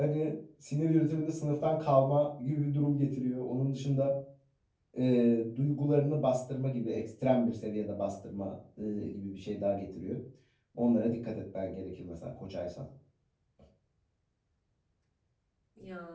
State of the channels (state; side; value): identical; both; correlation 1.00